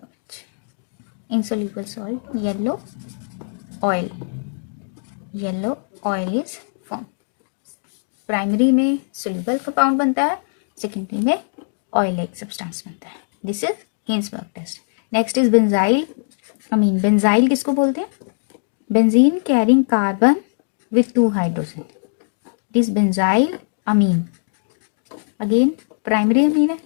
Insoluble salt, yellow oil. Yellow oil is formed. Primary में soluble compound बनता है, secondary में oil like substance बनता है. This is Hinsberg test. Next is benzyl amine. Benzyl किसको बोलते हैं? Benzene carrying carbon with 2 hydrogen. This benzyl amine again primary amine है.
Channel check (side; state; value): right; silent; digital silence